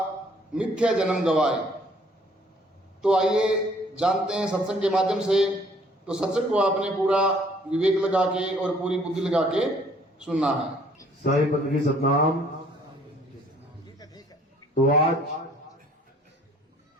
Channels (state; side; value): normal; both; correlation 0.60